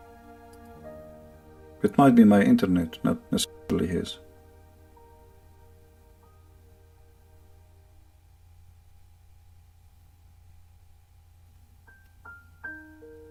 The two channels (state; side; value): identical; both; correlation 1.00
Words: It might be my internet, not necessarily his.